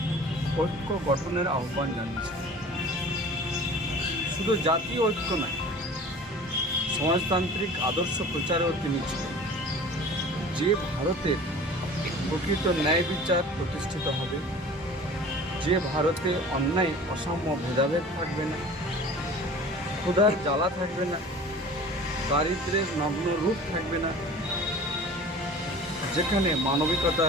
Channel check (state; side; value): normal; both; correlation 0.42